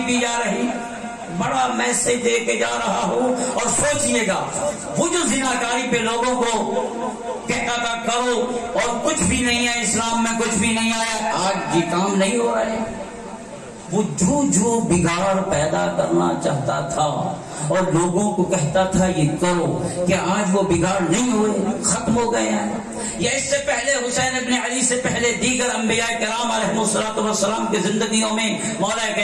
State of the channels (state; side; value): identical; both; correlation 1.00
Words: پی جا رہی، بڑا میسج دے کے جا رہا ہوں۔ اور سوچئے گا وہ جو زناکاری پہ لوگوں کو کہتا تھا کرو اور کچھ بھی نہیں ہے، اسلام میں کچھ بھی نہیں آیا، آج یہ کام نہیں ہو رہا ہے۔ وہ جو بگاڑ پیدا کرنا چاہتا تھا اور لوگوں کو کہتا تھا یہ کرو، کیا آج وہ بگاڑ نہیں ہوئے، ختم ہو گئے ہیں؟ یا اس سے پہلے حسین ابن علی سے پہلے دیگر انبیاء کرام علیہ الصلوۃ والسلام کی زندگیوں میں، مولا